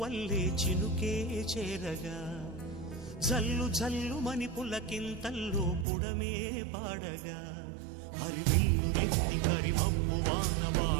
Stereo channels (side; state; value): left; drops out; at 5.9 s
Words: వల్లే చినుకే చేరగా జల్లు జల్లు మని పులకింతల్లు పుడమే పాడగా హరివిల్లు నెత్తి కరిమబ్బు వాన